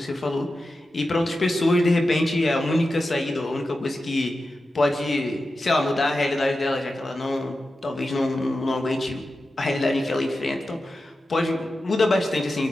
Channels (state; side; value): normal; both; correlation 0.92